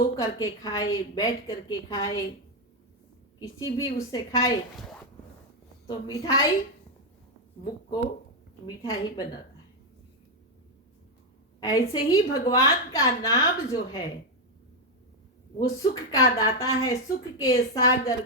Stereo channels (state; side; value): normal; both; correlation 0.04